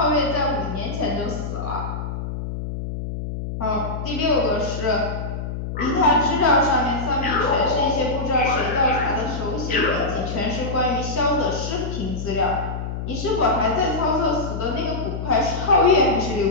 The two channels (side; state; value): left; noise; hum, 5 dB below the sound